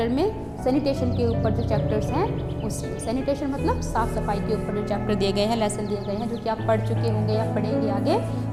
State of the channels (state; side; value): identical; both; correlation 1.00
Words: में? सैनिटेशन के ऊपर जो चैप्टर्स हैं उसमें। सैनिटेशन मतलब साफ़ सफाई के ऊपर जो चैप्टर दिए गए हैं, लेसन दिए गए हैं, जो कि आप पढ़ चुके होंगे या पढ़ेंगे आगे,